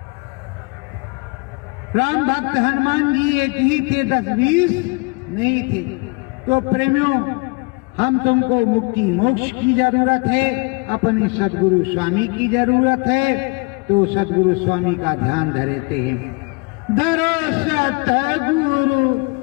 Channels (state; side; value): quieter; right; 29.7 dB